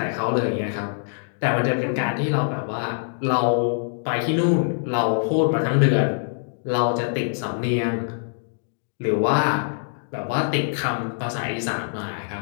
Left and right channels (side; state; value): right; silent; digital silence